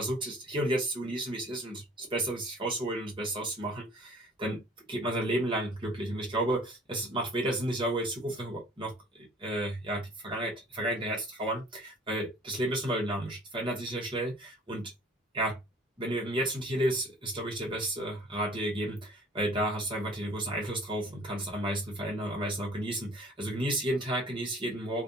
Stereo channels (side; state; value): both; normal; correlation 0.51